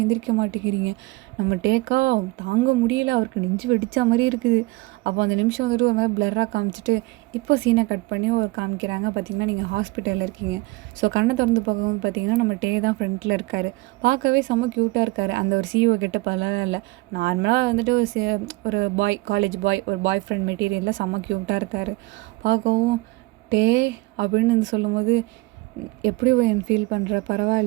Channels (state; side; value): quieter; left; 22.1 dB